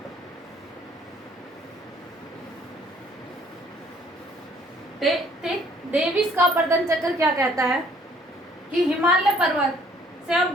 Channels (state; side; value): normal; both; correlation 0.60